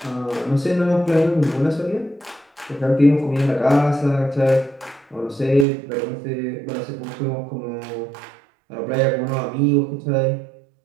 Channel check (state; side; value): drops out; left; at 5.7 s